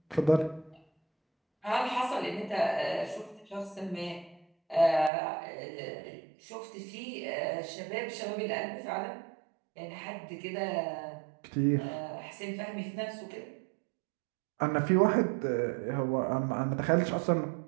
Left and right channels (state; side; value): drops out; left; at 5.1 s